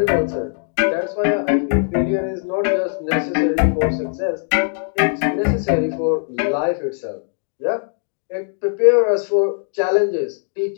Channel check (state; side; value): silent; right; digital silence